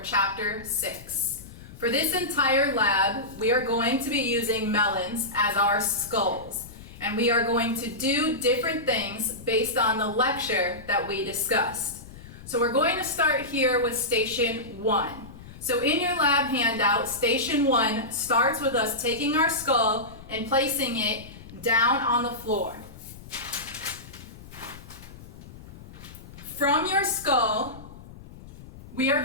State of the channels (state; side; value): noise; left; rumble, 17 dB below the sound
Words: chapter 6. For this entire lab, we are going to be using melons as our skulls, and we are going to do different things based on the lecture that we discussed. So we're going to start here with station 1. So in your lab handout, station 1 starts with us taking our skull and placing it down on the floor. From your skull, we are